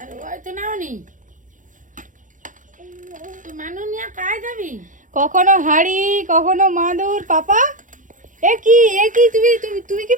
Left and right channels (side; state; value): left; late; 0.37 ms